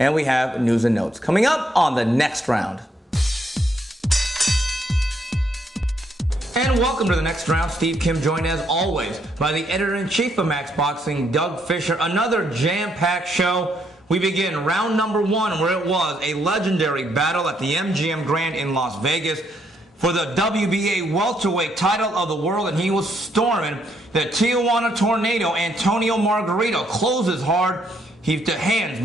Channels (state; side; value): normal; both; correlation 0.73